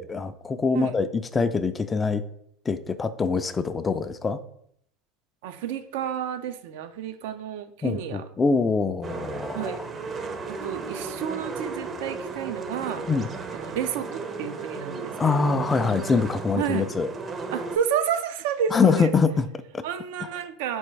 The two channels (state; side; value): normal; both; correlation 0.56